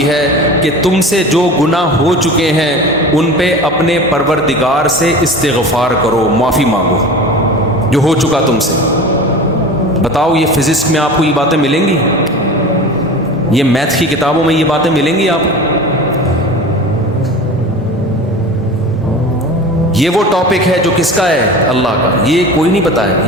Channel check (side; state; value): both; normal; correlation 0.35